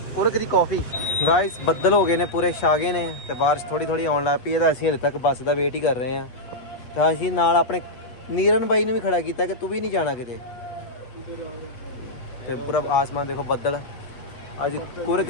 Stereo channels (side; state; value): right; late; 8.1 ms